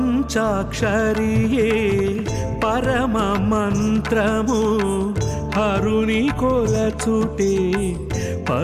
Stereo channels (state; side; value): identical; both; correlation 1.00